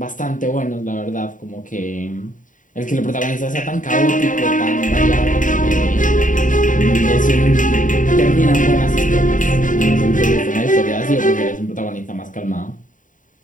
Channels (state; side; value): late; right; 0.38 ms